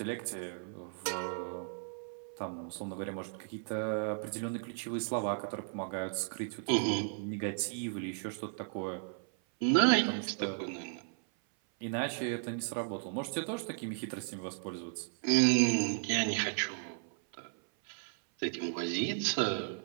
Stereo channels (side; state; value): left; silent; 54 dB below the other